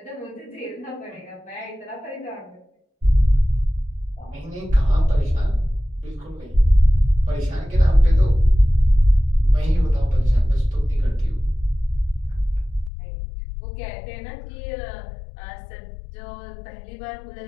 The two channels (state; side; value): drops out; right; at 12.9 s